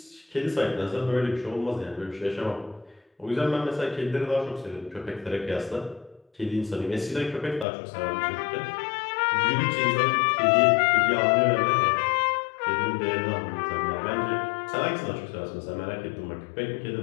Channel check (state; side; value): drops out; right; at 7.7 s